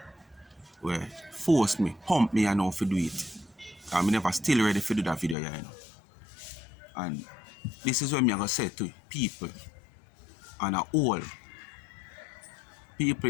where force me, pump me, I know to do it. I'm never still ready to do that video, you know. And this is what I'm going to say to people and all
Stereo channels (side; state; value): right; drops out; at 5.4 s